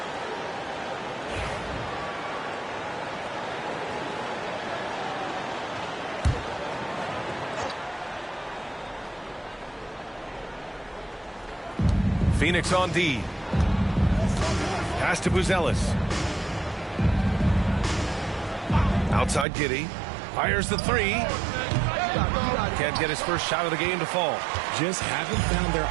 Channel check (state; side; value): drops out; left; at 19.5 s